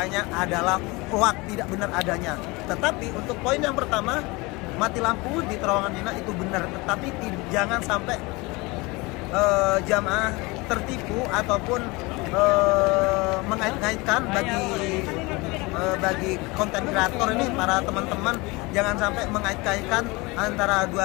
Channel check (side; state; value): right; quieter; 24.5 dB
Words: adalah hoak, tidak benar adanya. Tetapi untuk poin yang pertama, mati lampu di terowongan Mina itu benar, tetapi jangan sampai jamaah tertipu ataupun mengait-ngaitkan bagi konten kreator ini, para teman-teman jangan sampai mengait-ngaitkan antara